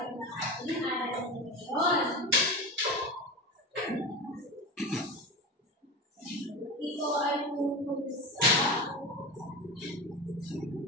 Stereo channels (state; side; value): normal; both; correlation 0.25